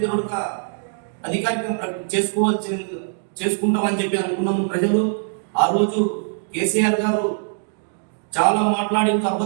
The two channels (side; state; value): left; silent; digital silence